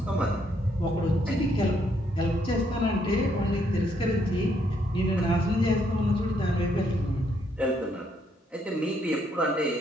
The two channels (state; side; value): normal; both; correlation 0.72